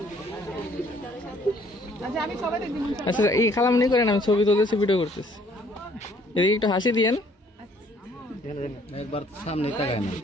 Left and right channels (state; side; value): normal; both; correlation 0.61